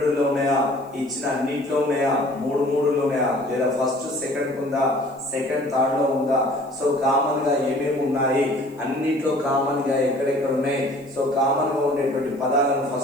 ఉన్నాయా ఇచ్చిన అన్నిట్లో ఉన్నాయా మూడులో ఉన్నాయా లేదా ఫస్ట్ సెకండ్ ఉందా సెకండ్ థర్డ్ లో ఉందా సో కామన్ గా ఏమేమి ఉన్నాయి అన్నిట్లో కామన్ గా ఎక్కడెక్కడ ఉన్నాయి సో కామన్ గా ఉండేటువంటి పదాలను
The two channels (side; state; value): left; noise; hiss, 30 dB below the sound